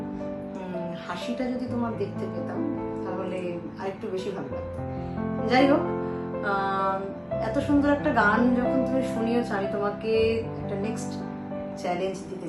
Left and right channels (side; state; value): both; identical; correlation 1.00